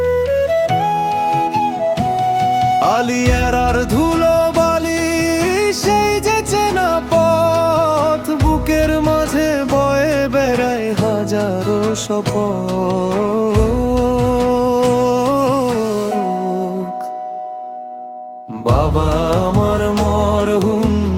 আলিয়ারার ধুলো বালি সেই যে চেনা পথ, বুকের মাঝে বয়ে বেড়ায় হাজারো শপথ। বাবা আমার মরহুম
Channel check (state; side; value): identical; both; correlation 1.00